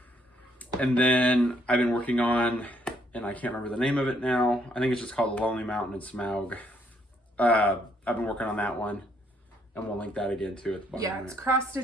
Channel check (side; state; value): both; normal; correlation 0.70